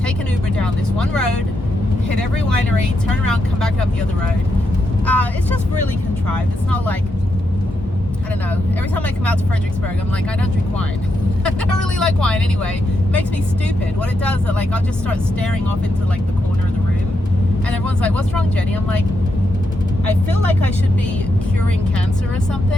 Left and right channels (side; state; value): both; normal; correlation 0.83